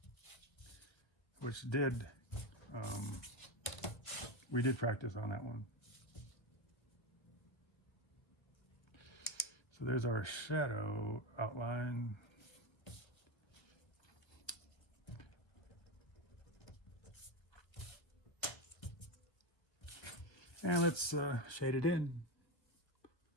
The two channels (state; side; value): late; right; 1.3 ms